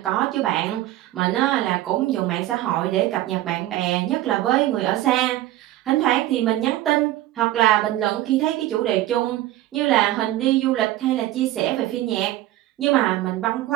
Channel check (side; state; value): left; quieter; 15.2 dB